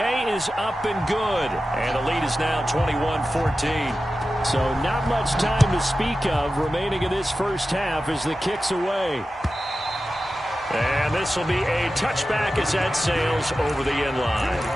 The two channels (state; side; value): normal; both; correlation 0.93